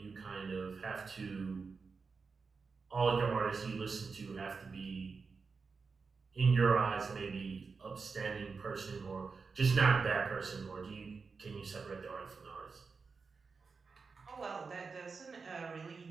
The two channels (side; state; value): left; quieter; 4.8 dB